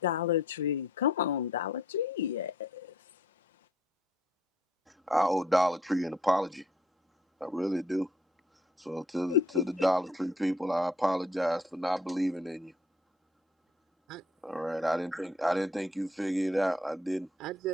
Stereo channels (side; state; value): both; normal; correlation 0.63